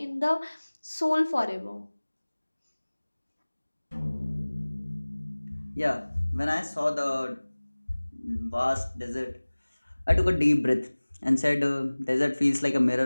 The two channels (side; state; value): both; inverted; correlation -1.00